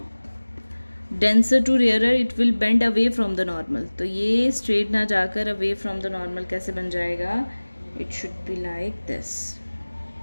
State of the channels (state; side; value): inverted; both; correlation -1.00